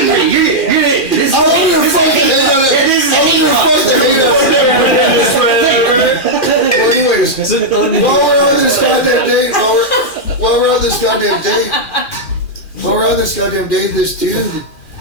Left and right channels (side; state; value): right; late; 2.4 ms